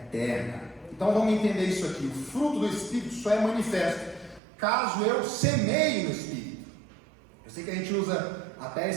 Então vamos entender isso aqui. O fruto do Espírito só é manifesto caso eu semeie no Espírito. Eu sei que a gente usa até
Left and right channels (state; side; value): drops out; left; at 4.4 s